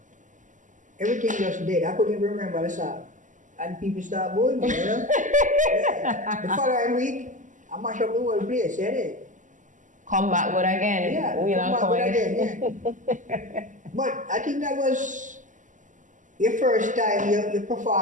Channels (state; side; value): late; left; 0.37 ms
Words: Everything just dead. I couldn't even remember the song. And people start booing me, you know? Yeah. The following week, I mash up the whole place, yeah. Come back good again. Yeah, come back good again, yeah. But I think that was your first time you